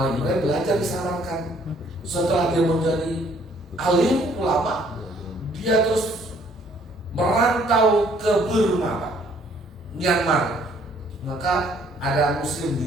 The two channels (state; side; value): normal; both; correlation 0.62